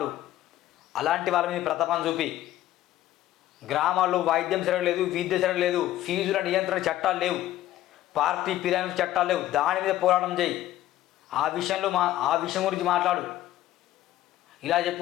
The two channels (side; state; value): right; quieter; 14.0 dB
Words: అలాంటి వాళ్ళ మీద ప్రతాపం చూపి, గ్రామాల్లో వైద్యం సరగలేదు, విద్య సరగలేదు, ఫీజుల నియంత్రణ చట్టాలు లేవు, పార్టీ ఫిరాయింపు చట్టాలు లేవు, దాని మీద పోరాటం చేయి. ఆ విషయం గురించి మాట్లాడు. ఇలా